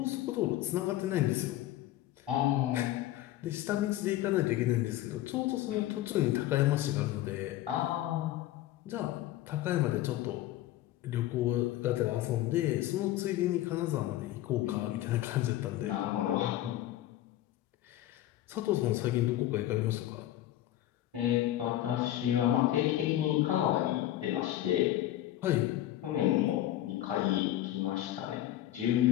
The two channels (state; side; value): quieter; right; 14.1 dB